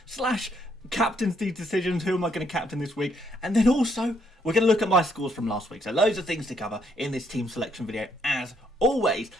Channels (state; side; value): normal; both; correlation 0.72